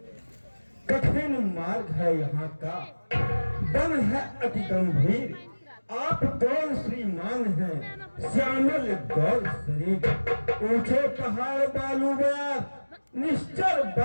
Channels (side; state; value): both; inverted; correlation -1.00